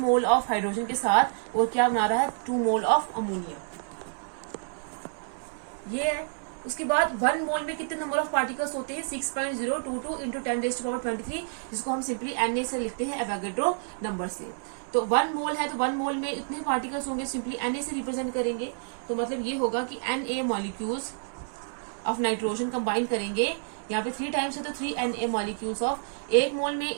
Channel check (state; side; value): silent; left; 59 dB below the other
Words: ऑफ हाइड्रोजन के साथ, और क्या बना रहा है? 2 मोल ऑफ अमोनिया। ये है। उसके बाद 1 मोल में कितने नंबर ऑफ पार्टिकल्स होते हैं? 6.022 इंटू 10⁻23, जिसको हम सिंपली Na से लिखते हैं, एवोगाड्रो नंबर से। तो 1 मोल है तो 1 मोल में इतने पार्टिकल्स होंगे, सिंपली Na से रिप्रेजेंट करेंगे। तो मतलब ये होगा कि Na molecules of nitrogen combine करेंगे, यहाँ पे 3 टाइम्स है तो 3 Na मॉलिक्यूल्स ऑफ। 1 मोल में